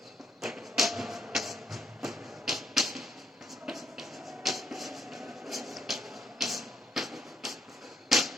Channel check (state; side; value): normal; both; correlation 0.74